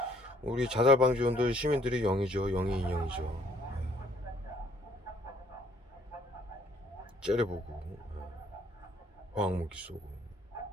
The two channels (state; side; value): normal; both; correlation 0.63